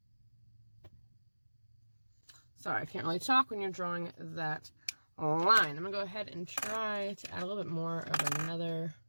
Sorry, I can't really talk when you're drawing that line. I'm going to go ahead and try to add a little bit more of another,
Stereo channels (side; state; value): both; inverted; correlation -1.00